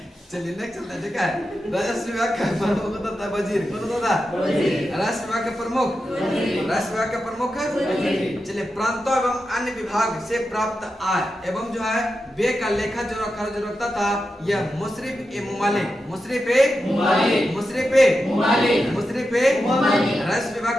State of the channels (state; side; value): normal; both; correlation 0.89